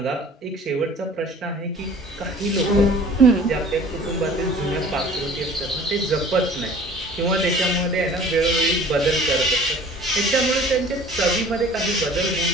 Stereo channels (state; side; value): normal; both; correlation 0.48